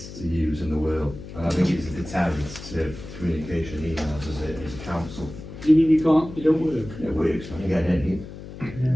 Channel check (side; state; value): left; noise; hum, 13 dB below the sound